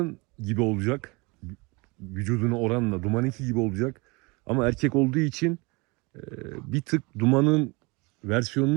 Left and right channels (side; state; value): left; quieter; 27.1 dB